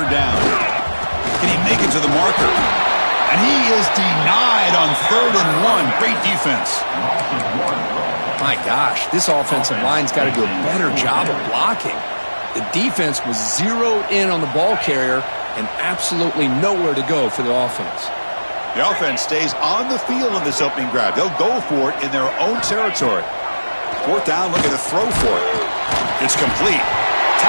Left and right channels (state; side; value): inverted; both; correlation -1.00